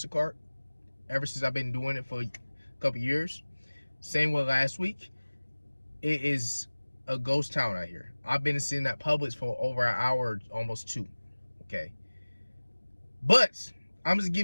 ever since I've been doing it for a couple years. Same with last week. It is a ghost town out here. I've been sitting at Publix for over an hour, almost 2. Okay. But I'm just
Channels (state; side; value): inverted; both; correlation -1.00